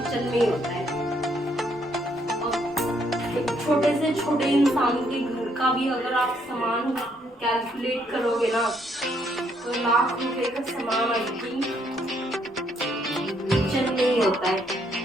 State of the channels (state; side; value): normal; both; correlation 0.71